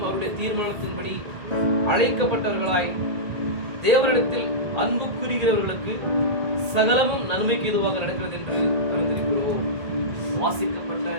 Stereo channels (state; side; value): late; left; 1.8 ms